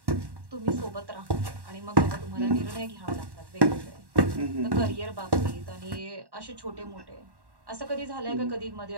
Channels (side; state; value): left; late; 1.1 ms